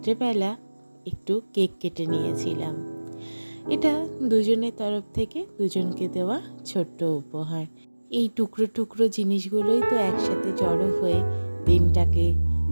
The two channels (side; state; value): both; inverted; correlation -1.00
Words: একটু কেক কেটে নিয়েছিলাম। এটা দুজনের তরফ থেকে দুজনকে দেওয়া ছোট্ট উপহার। এই টুকরো টুকরো জিনিসগুলোই তো একসাথে জড়ো হয়ে দিনটাকে,